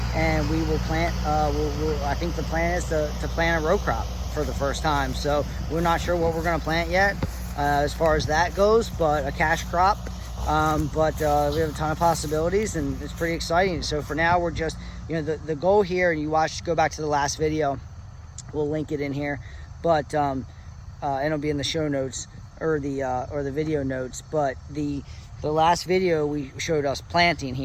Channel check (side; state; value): both; identical; correlation 1.00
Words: and we will plant, I think the plan is to plant a row crop for the first time. So we're not sure what we're going to plant yet as far as that goes, but a cash crop. But we have a ton of possibilities, and it's pretty exciting. So for now, we're just, the goal here, and go back to the last video, we'll link it in here, but and it'll be in the show notes or the video notes. But the last video, we showed us planting